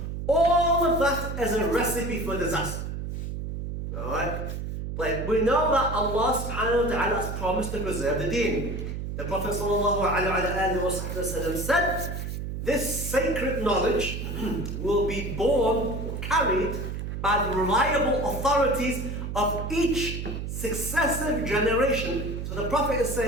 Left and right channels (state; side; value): noise; right; hum, 5 dB below the sound